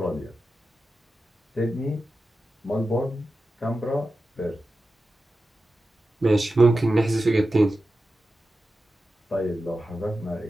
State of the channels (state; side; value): normal; both; correlation 0.92